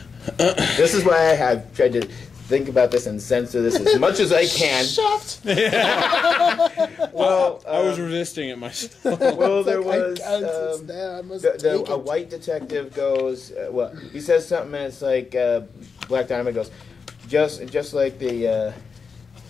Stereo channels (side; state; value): right; quieter; 5.4 dB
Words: This is why I have tried to think about this and censor this as much as I can. Shaft. Well, I was resisting it myself. Well, there was a white detective goes. Well, he says something, and it's like Black Dynamite goes, just like the